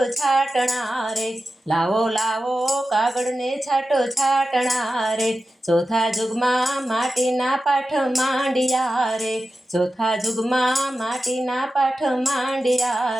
છાંટણા રે, લાવો લાવો કાગળને છાંટો છાંટણા રે, ચોથા જુગમાં માટીના પાઠ માંડ્યા રે, ચોથા જુગમાં માટીના પાઠ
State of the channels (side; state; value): both; normal; correlation 0.93